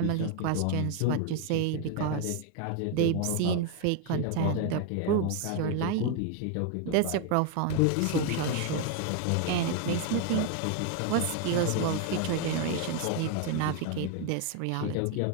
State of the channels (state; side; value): different; both; correlation 0.01